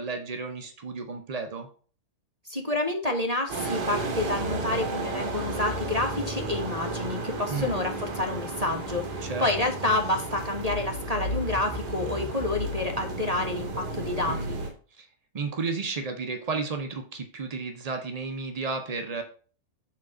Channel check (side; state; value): left; late; 1.8 ms